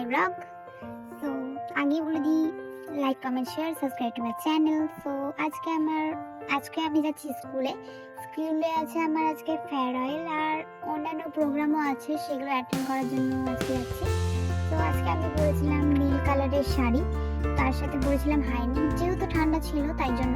ব্লগ। সো আগে বলে দিই, like comment share subscribe to my channel. So আজকে আমি যাচ্ছি স্কুলে আছে আমার আজকে ফেয়ারওয়েল আর অন্যান্য প্রোগ্রামও আছে, সেগুলো অ্যাটেন্ড করার জন্য আজকে যাচ্ছি। তো আজকে আমি পরেছিলাম নীল কালারের শাড়ি, তার সাথে পরেছিলাম হাইনেক, যেহেতু ঠান্ডা ছিল তাই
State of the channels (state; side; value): identical; both; correlation 1.00